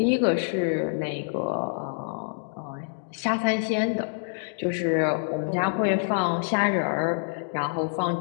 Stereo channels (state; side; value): silent; right; digital silence